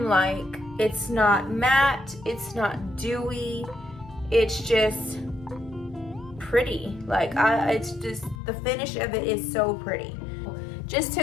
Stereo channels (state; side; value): drops out; right; at 8.4 s